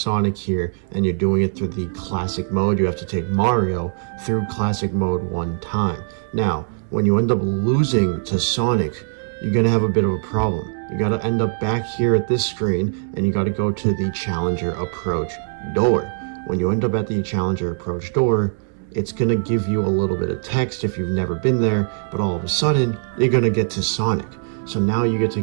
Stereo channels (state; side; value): silent; left; digital silence